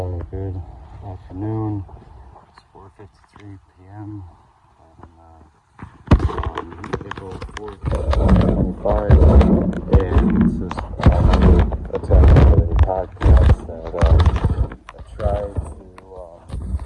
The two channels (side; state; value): both; identical; correlation 1.00